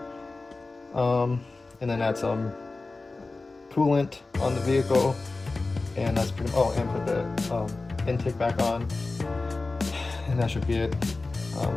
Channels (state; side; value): quieter; right; 3.5 dB